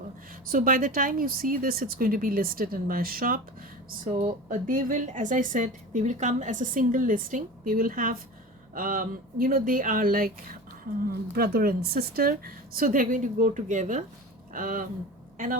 So by the time you see this, it's going to be listed in my shop. So they will, as I said, they will come as a single listing. They will have you know, they are like brother and sister, so they're going to go together. And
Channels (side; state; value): both; normal; correlation 0.32